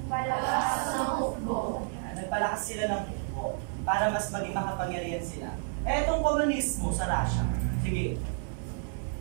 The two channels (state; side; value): silent; left; 57 dB below the other